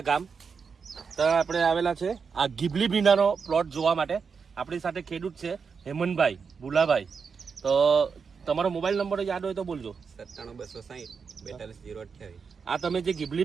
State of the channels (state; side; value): quieter; left; 5.7 dB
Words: ગામ ત્યાં આપણે આવેલા છે આ ગીબલી ભીંડાનો પ્લોટ જોવા માટે. આપણી સાથે ખેડૂત છે હેમંતભાઈ ભુલાભાઈ. તો તમારો મોબાઈલ નંબર યાદ હોય તો બોલજો. 97 આ તમે જે